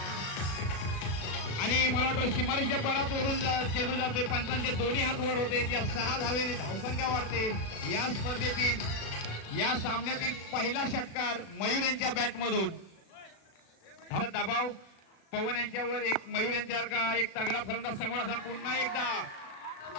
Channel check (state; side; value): late; right; 36 ms